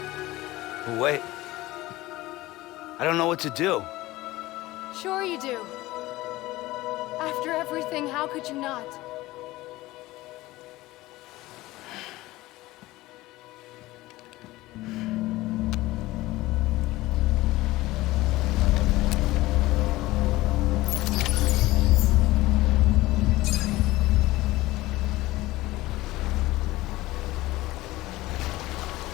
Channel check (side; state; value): right; quieter; 18.4 dB